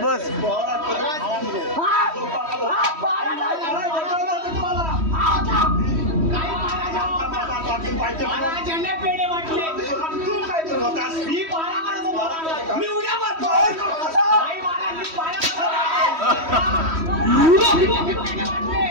बस पेढे वाटले तू काय करत होतास? मी पारा करत होतो. मी उड्या मारतो.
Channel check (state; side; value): late; left; 3.1 ms